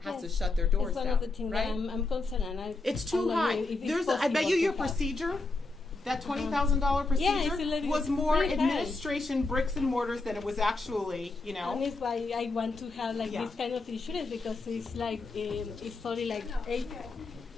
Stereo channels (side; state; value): right; quieter; 3.4 dB